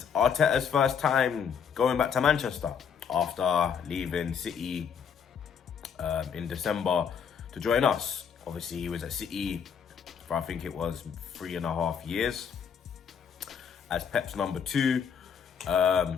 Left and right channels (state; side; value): quieter; right; 7.2 dB